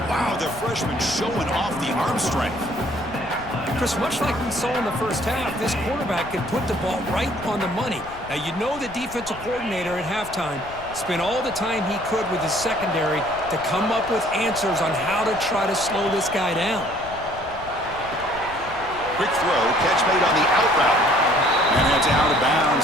wow, the freshman showing off the arm strength. Chris, much like we saw in the first half, this quarterback can put the ball right on the money. Now, you know the defensive coordinator at halftime spent all the time he could with his secondary to come up with answers on how to try to slow this guy down. Quick throw, catch made on the out route. And it's out of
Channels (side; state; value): left; noise; rumble, 17 dB below the sound